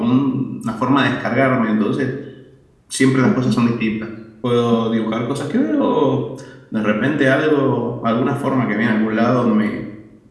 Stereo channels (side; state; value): both; identical; correlation 1.00